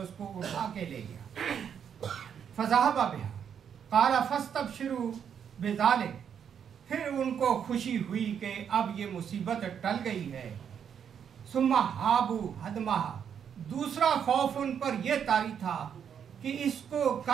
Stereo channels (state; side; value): quieter; left; 8.0 dB